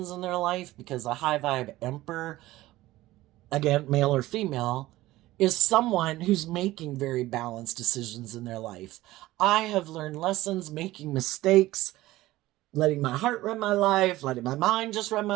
in their life because a high vibe emperor, again, male or female, is someone who's making very balanced decisions in their life. I have learned lessons making mistakes, letting my heart run my life, letting my mind just run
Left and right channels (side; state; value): left; quieter; 17.0 dB